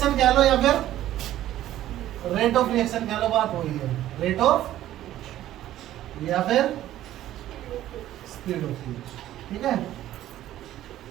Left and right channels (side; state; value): left; quieter; 13.3 dB